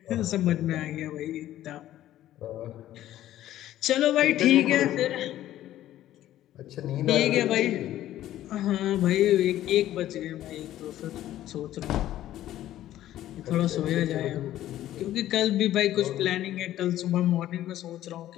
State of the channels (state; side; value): quieter; right; 13.3 dB